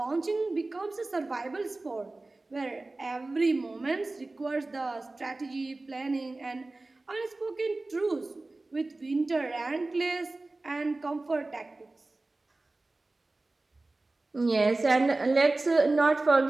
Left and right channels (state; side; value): quieter; left; 3.1 dB